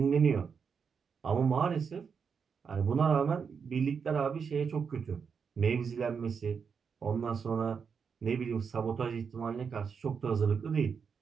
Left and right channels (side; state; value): left; quieter; 6.2 dB